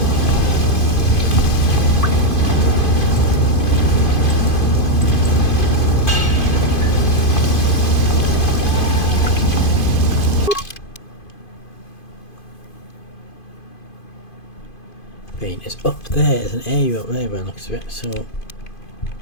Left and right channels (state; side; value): late; right; 2.5 ms